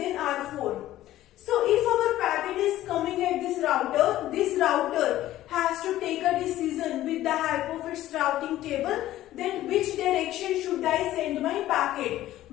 R4. So if our packet is coming at this router has to take a decision with the help of its routing table, then which direction should I send my packet?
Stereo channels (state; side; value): quieter; right; 14.3 dB